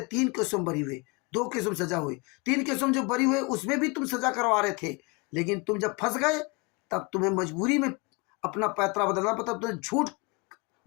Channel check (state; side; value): quieter; right; 28.4 dB